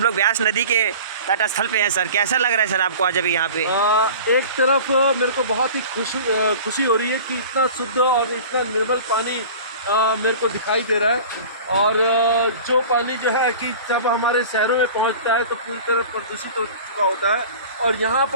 लोग व्यास नदी के तट स्थल पे हैं। सर कैसा लग रहा है सर आपको आज अभी यहाँ पे? एक तरफ मेरे को बहुत ही खुशी हो रही है कि इतना शुद्ध और इतना निर्मल पानी मेरे को दिखाई दे रहा है। और जो पानी जो है कि जब हमारे शहरों में पहुँचता है तो पूरी तरह प्रदूषित हो चुका होता है और यहाँ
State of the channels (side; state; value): both; inverted; correlation -0.40